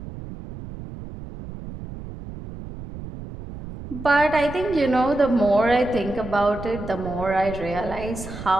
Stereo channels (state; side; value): noise; right; rumble, 12 dB below the sound